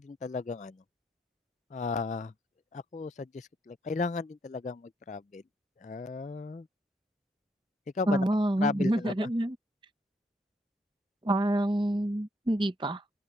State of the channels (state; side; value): normal; both; correlation 0.75